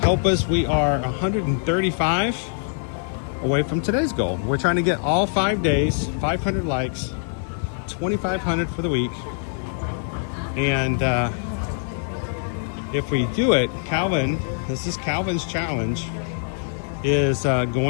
help us. We are 135 away from today's goal. We're trying to get all 5 days, 500 likes, 2,500 for the week. And if we do it, Calvin, this is Calvin's challenge, is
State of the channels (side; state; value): right; silent; digital silence